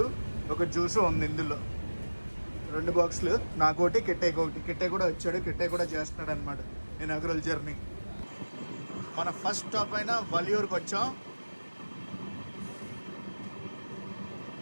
ఒక జ్యూస్ ఉంది ఇందులో. 2 బాక్సులు, నాకోటి, కిట్టేకి ఒకటి. కిట్టే కూడా వచ్చాడు, కిట్టే కూడా చేస్తున్నాడు అనమాట ఇనాగ్రల్ జర్నీ. మన ఫస్ట్ స్టాప్ అయిన వలియూరుకి వచ్చాం.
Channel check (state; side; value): inverted; both; correlation -1.00